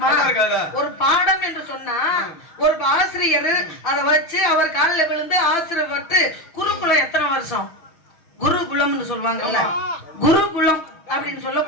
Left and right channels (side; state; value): right; late; 6.3 ms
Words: ஒரு பாடம் என்று சொன்னா ஒரு ஆசிரியர் அதை வச்சு அவர் காலில் விழுந்து ஆசிரியர் பட்டு குருகுலம் எத்தனை வருஷம்? குருகுலம்னு சொல்லுவாங்கல்ல, குருகுலம் அப்படின்னு